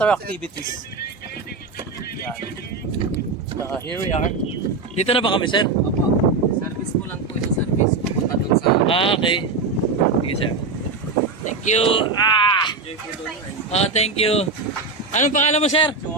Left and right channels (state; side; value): quieter; left; 4.0 dB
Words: activities. Yan. So here we are. Dito na ba kami, sir? Service ko lang po sa service. Pupunta dun sa... Okay. Sige, sir. Thank you. Thank you. Anong pangalan mo, sir?